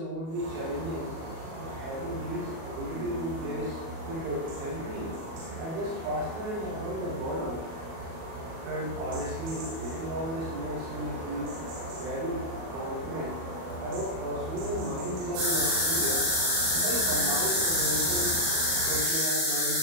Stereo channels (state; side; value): late; left; 37 ms